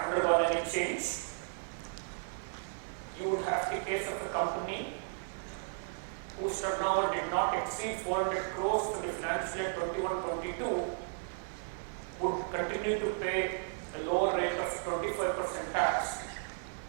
any change. You would have the case of a company whose turnover did not exceed 400 crores for the financial year 21-22 would continue to pay a lower rate of 25% tax,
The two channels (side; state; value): left; silent; digital silence